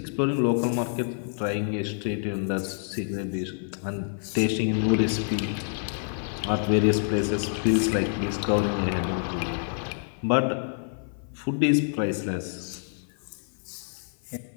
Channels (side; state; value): right; silent; 55 dB below the other